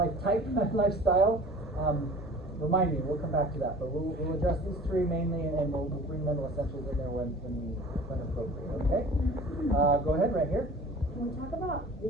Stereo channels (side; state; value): both; normal; correlation 0.44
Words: type, lifestyle. Remind me, we'll come back to that. But we'll address these three mainly, and we'll bring mental essentials in there when appropriate. Okay? Go ahead, right here. Can we talk about the